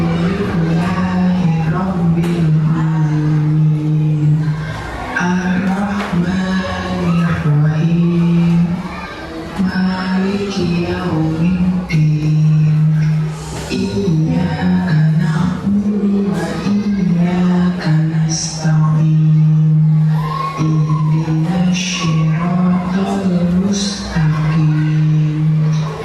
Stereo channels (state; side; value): identical; both; correlation 1.00